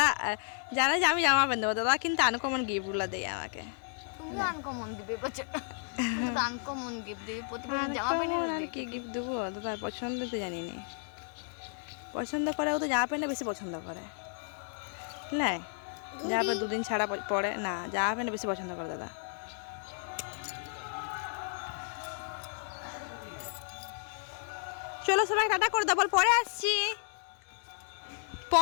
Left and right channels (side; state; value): right; silent; 56 dB below the other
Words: জানে যে আমি জামা প্যান্ট দেবো, দাদা কিন্তু আনকমন গিফটগুলো দেয় আমাকে। তুমি আনকমন দিবে বছর, তুমি আনকমন গিফট দিবে প্রতিদিন জামা প্যান্ট। আর কি গিফট দেবো দাদা? পছন্দ তো জানি না, পছন্দ করে ও তো জামা প্যান্ট বেশি পছন্দ করে। না জামা প্যান্ট দুদিন ছাড়া পরে না, জামা প্যান্ট বেশি পছন্দ করে দাদা। চলো সবাই টাটা করে দাও, বল পরে আসছি।